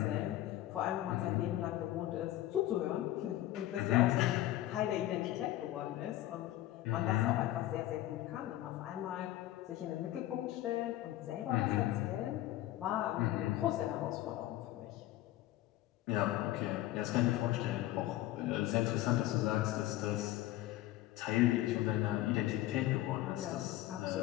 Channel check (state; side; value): quieter; right; 15.0 dB